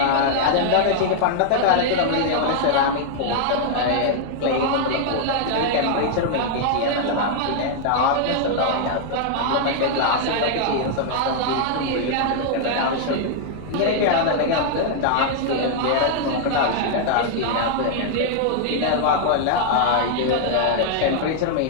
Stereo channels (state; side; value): different; both; correlation -0.01